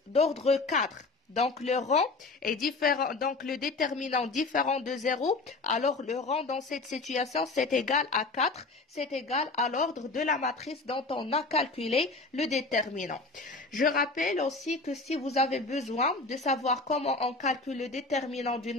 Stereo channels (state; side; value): quieter; right; 3.6 dB